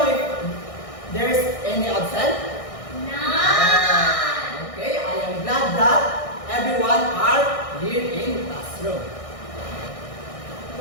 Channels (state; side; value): late; right; 1.6 ms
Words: if there's any absent? None. Okay, I am glad that everyone are here in classroom.